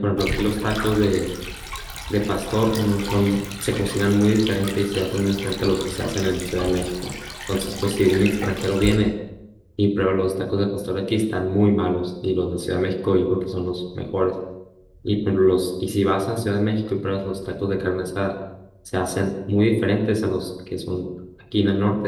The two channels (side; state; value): both; identical; correlation 1.00